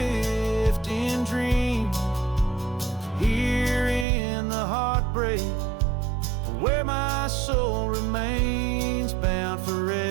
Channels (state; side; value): drops out; left; at 4.0 s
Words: in dream. Here in the heartbreak, where my soul remains bound